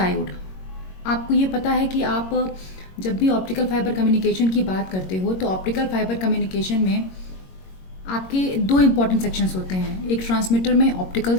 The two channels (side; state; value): right; late; 22 ms